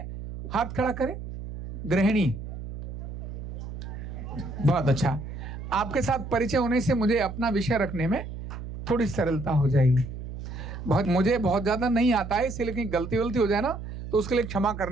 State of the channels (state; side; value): noise; right; hum, 9 dB below the sound